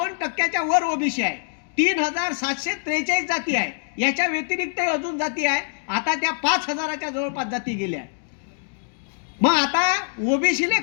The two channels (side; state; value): right; silent; digital silence